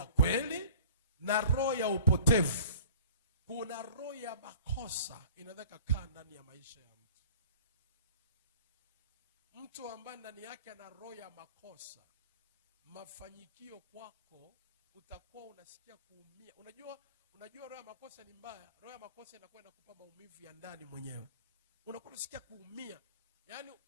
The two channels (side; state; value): both; inverted; correlation -0.46